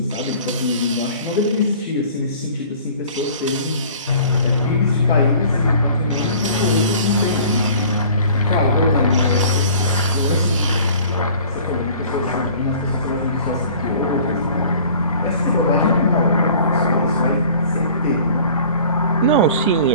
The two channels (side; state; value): both; inverted; correlation -0.48